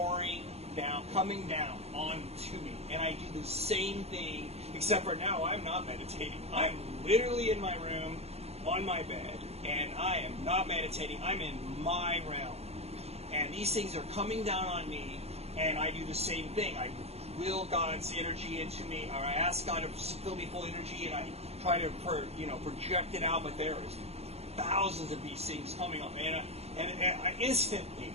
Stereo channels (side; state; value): left; late; 0.30 ms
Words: down, coming down onto me, and I do the same thing, except for now I'm not meditating. I'm literally in my room, on my bed, and I am not meditating. I'm in my realm, and these things are coming down on me, and I do the same thing. I will God's energy into me, or I ask God to fill me full energy, and I try to project it out, but there is thousands of these things coming up, and I instantly